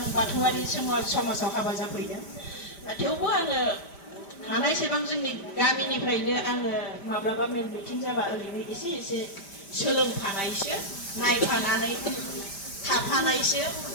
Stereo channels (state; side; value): late; right; 5.1 ms